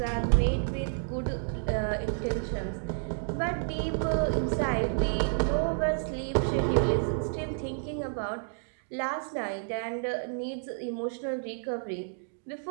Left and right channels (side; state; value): left; silent; digital silence